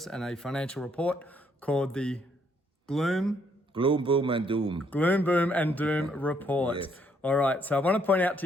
and a financial report called the Gloom, Boom, and Doom. Boom, and Doom report. Yes. All right, so I want to point out to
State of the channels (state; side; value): normal; both; correlation 0.70